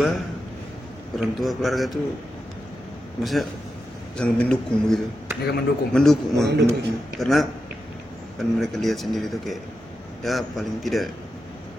keluarga tuh maksudnya sangat mendukung begitu. Mereka mendukung. Mendukung. Karena kan mereka lihat sendiri tuh kayak ya paling tidak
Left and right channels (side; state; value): both; normal; correlation 0.89